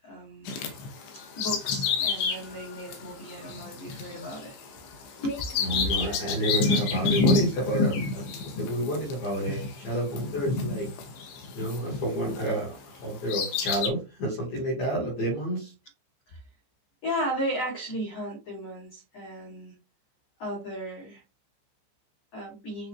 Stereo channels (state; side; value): late; right; 15 ms